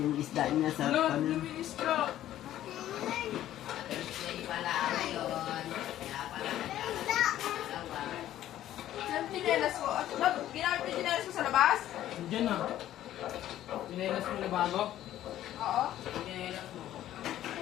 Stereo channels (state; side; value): quieter; right; 12.8 dB